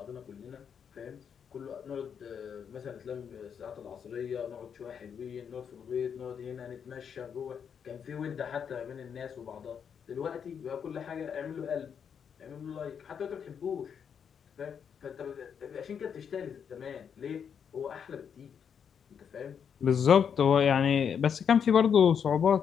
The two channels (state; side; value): quieter; right; 7.4 dB